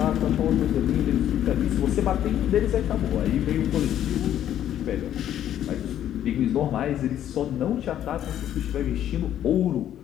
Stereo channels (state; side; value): quieter; right; 11.1 dB